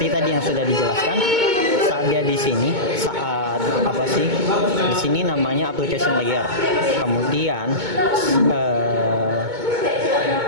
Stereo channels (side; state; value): left; late; 2.2 ms